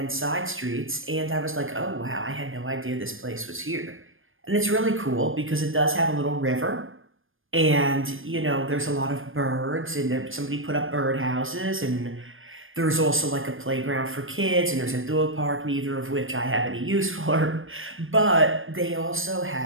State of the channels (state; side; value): late; left; 0.59 ms